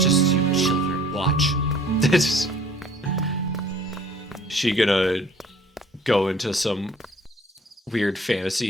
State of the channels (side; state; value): both; normal; correlation 0.53